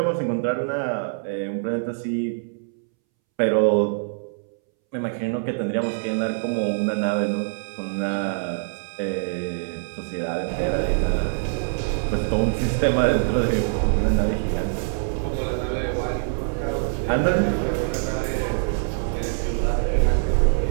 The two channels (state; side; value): silent; left; 63 dB below the other